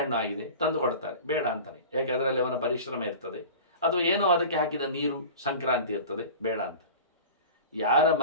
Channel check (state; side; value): inverted; both; correlation -0.36